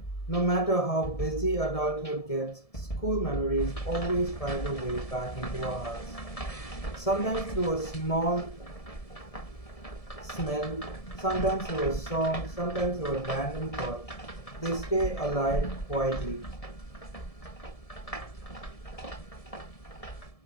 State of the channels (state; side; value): late; right; 1.7 ms